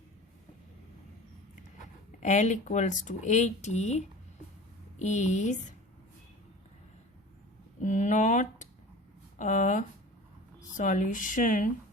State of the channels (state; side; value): normal; both; correlation 0.38